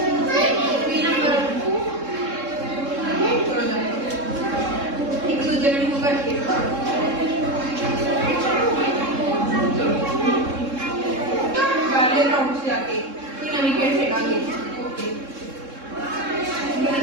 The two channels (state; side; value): late; left; 3.7 ms